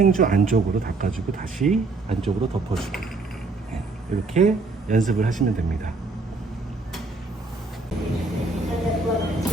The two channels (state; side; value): quieter; left; 3.6 dB